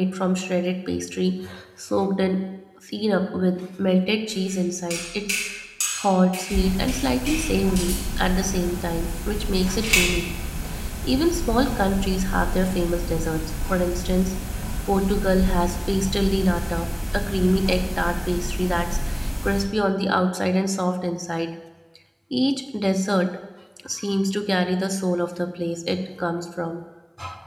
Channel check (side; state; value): both; identical; correlation 1.00